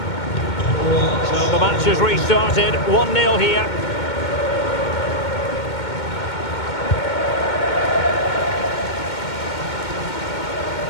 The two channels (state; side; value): late; right; 2.2 ms